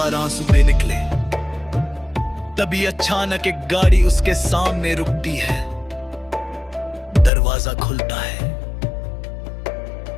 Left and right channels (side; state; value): right; drops out; at 7.3 s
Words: आंसू निकले। तभी अचानक एक गाड़ी उसके सामने रुकती है। दरवाजा खुलता है,